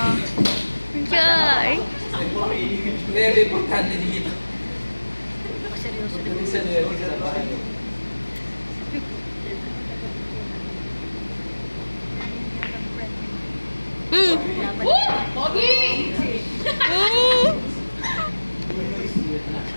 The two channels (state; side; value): inverted; both; correlation -1.00